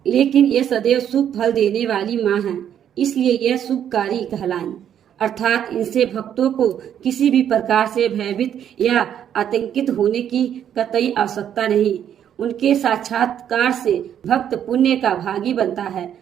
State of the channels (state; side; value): quieter; left; 9.6 dB